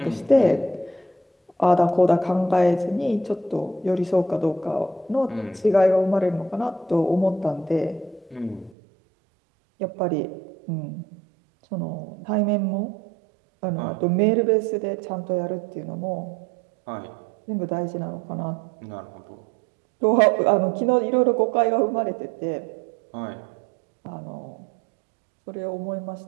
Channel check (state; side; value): drops out; left; at 8.7 s